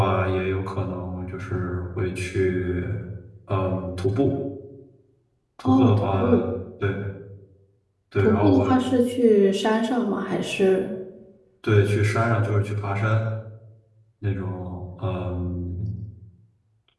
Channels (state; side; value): identical; both; correlation 1.00